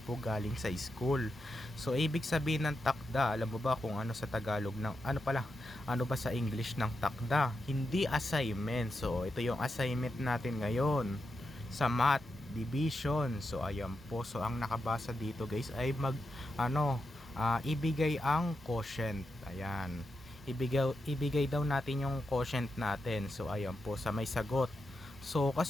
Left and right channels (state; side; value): normal; both; correlation 0.87